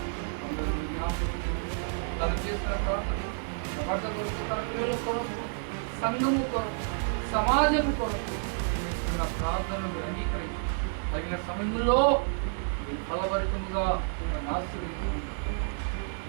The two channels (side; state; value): left; silent; 58 dB below the other